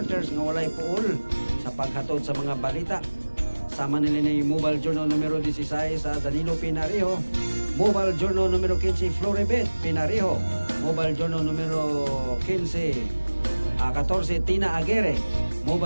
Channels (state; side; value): inverted; both; correlation -1.00